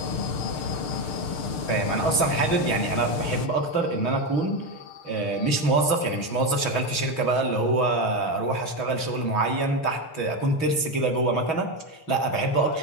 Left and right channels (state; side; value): late; right; 6.2 ms